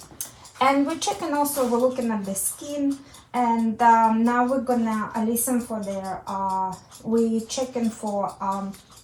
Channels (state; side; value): identical; both; correlation 1.00